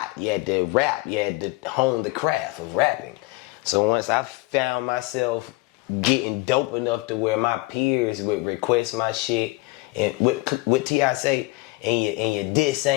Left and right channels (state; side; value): quieter; right; 22.4 dB